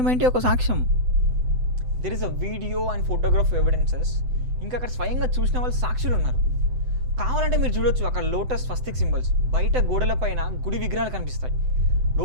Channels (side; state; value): left; late; 7.9 ms